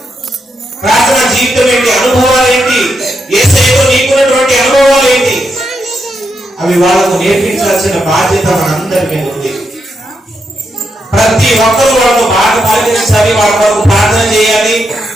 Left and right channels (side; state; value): both; normal; correlation 0.83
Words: ప్రార్థన జీవితం ఏంటి, అనుభవాలు ఏంటి, యేసయ్యలో నీకున్నటువంటి అనుభవాలు ఏంటి, అవి వాళ్ళకు నేర్పించాల్సిన బాధ్యత మనందరి మీద ఉంది. ప్రతి ఒక్కరు వాళ్ళకు బాగా పాటించాలి, వాళ్ళ వరకు ప్రార్థన చేయాలి.